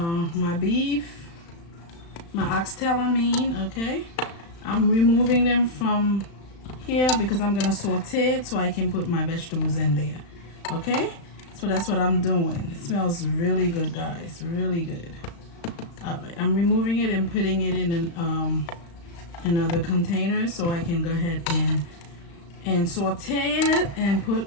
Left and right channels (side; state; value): right; late; 35 ms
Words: beef, my oxtail, I mean. Okay, I'm removing them from here because I'm gonna saute it so I can put my vegetables in there. Okay, so that's what I'm doing. It smells really good, guys, really good. All right, I'm removing it and putting it in another container so I can go ahead and saute it and put